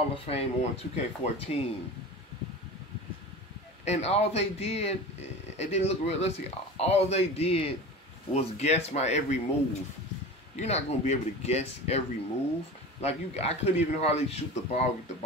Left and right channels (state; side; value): normal; both; correlation 0.33